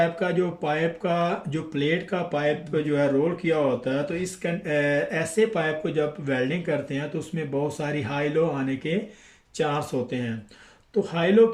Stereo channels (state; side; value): identical; both; correlation 1.00